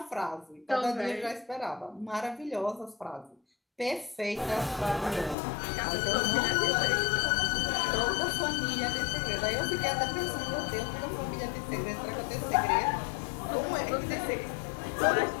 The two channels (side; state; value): right; drops out; at 5.4 s